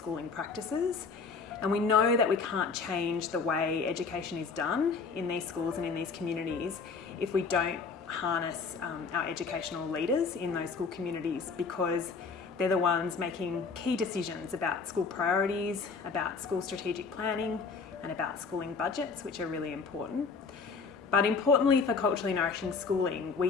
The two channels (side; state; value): right; quieter; 5.0 dB